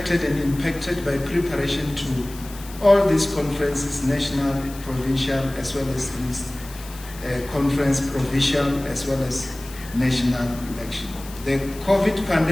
and impacted by preparation all these conferences, national, provincial, as well as this conference, provincial, as well as national election. The COVID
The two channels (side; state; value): left; noise; hiss, 17 dB below the sound